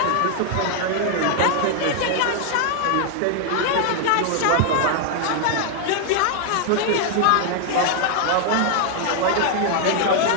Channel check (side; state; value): both; different; correlation 0.00